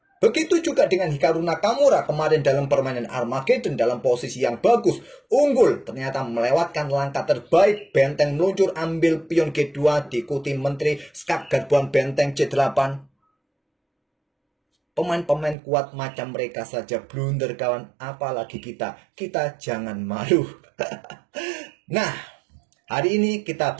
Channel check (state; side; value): drops out; left; at 15.6 s